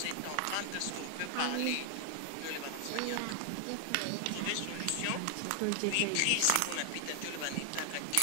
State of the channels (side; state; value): both; different; correlation 0.00